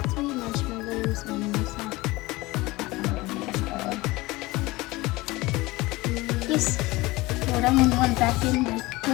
3 marshmallows on this side. Yes. Well, that one went back in the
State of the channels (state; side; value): quieter; right; 20.9 dB